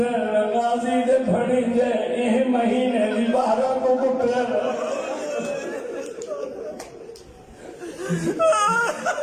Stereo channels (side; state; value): both; identical; correlation 1.00